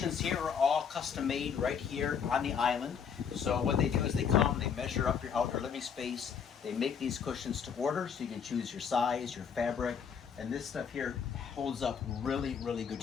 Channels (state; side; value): quieter; right; 7.0 dB